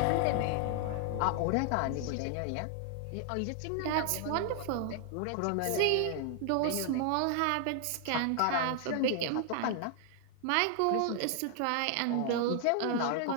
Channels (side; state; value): both; different; correlation 0.00